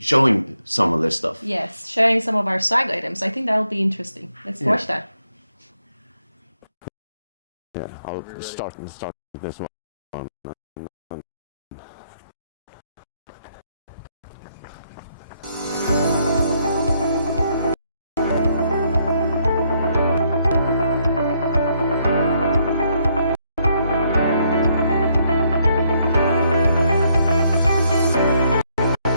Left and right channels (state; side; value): inverted; both; correlation -0.73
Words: some of this stuff. Yes, sharing some of our swag items. I think that'll be interesting. Let's watch that. Yeah, I'll start this one.